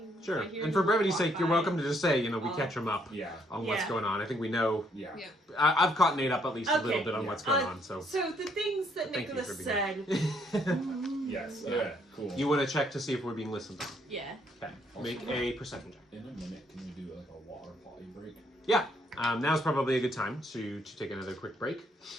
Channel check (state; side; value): normal; both; correlation 0.69